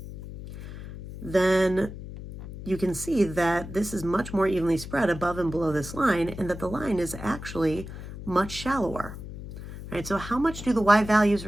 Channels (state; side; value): noise; left; hum, 11 dB below the sound